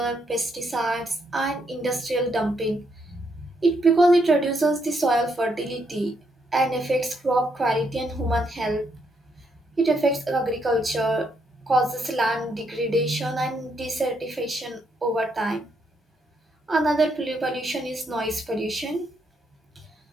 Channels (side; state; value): both; normal; correlation 0.76